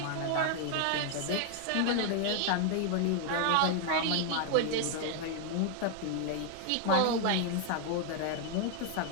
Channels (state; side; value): different; both; correlation 0.00